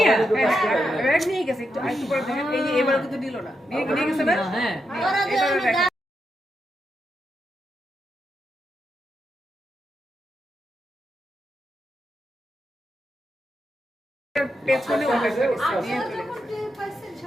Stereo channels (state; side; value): normal; both; correlation 0.84